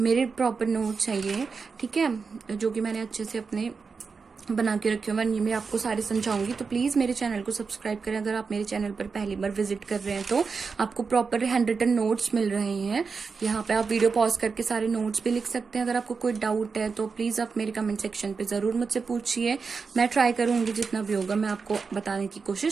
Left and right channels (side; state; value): left; quieter; 5.0 dB